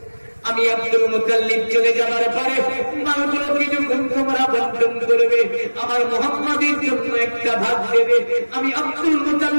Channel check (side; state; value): both; inverted; correlation -1.00